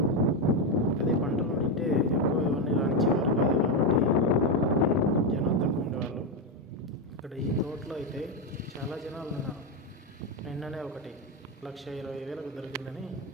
అదే పంటలు ఉంటే ఎక్కువ ఎవరిని రానిచ్చేవారు కాదు కాబట్టి జనాలు తక్కువ ఉండేవాళ్ళు. ఇక్కడ ఈ తోటలో అయితే చాలా జనాలు ఉన్నారు. నిన్ననే ఒకటి 1,20,000 దొరికిందని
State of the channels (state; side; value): normal; both; correlation 0.08